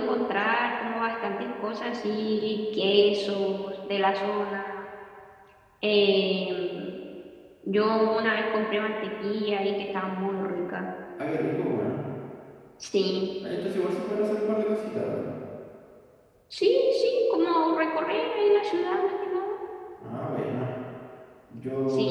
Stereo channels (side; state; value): both; identical; correlation 1.00